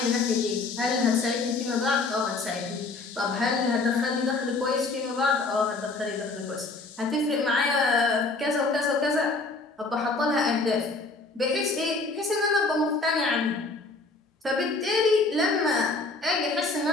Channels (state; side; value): quieter; right; 3.6 dB